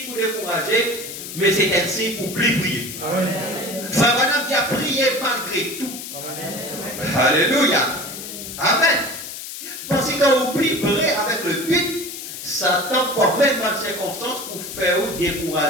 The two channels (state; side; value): noise; left; hiss, 9 dB below the sound